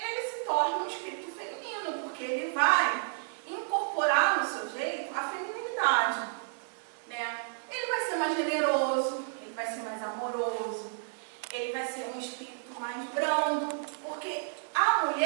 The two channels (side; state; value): left; silent; digital silence